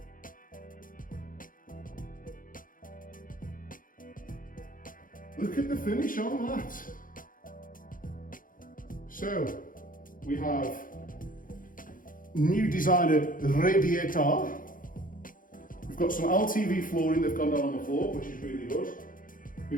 Look at the finish on that. So, we have new designer radiator. We've got some LTV flooring that's gone down on the floor, which is really good.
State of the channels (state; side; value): late; right; 0.40 ms